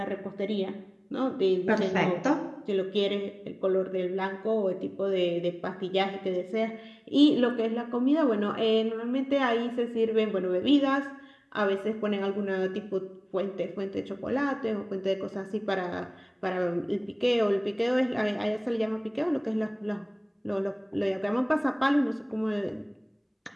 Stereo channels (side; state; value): both; identical; correlation 1.00